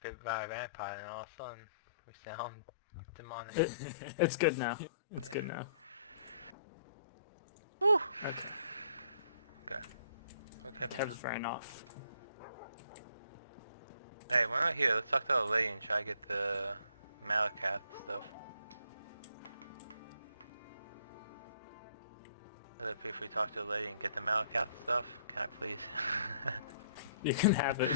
bit by a vampire and all of a sudden we sound demonic. It's good now. It's good now. Whew. Okay. Okay. Okay. Kev's ran off. Hey, we're not here. Let's talk to the lady and try to get the Malacat stuff. Is it if we talk to the lady and get the Malacat stuff? Can I please? You can have it.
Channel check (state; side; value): inverted; both; correlation -0.64